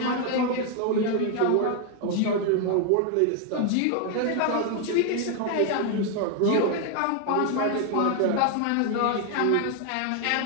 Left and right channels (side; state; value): both; different; correlation 0.00